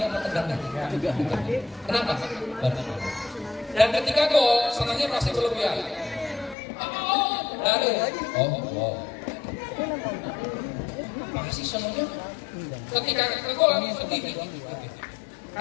atau tegangnya? Kenapa? Dan ketika gol, senangnya masih berlebihan. Masih senangnya. Ketika gol sedih.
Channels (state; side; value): drops out; right; at 6.6 s